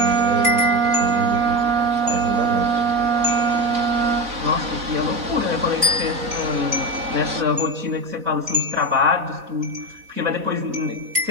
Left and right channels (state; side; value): late; left; 4.0 ms